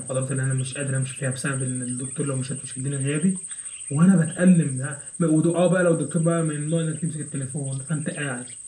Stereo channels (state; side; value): identical; both; correlation 1.00